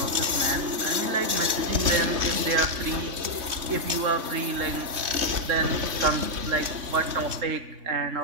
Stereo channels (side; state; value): left; late; 3.2 ms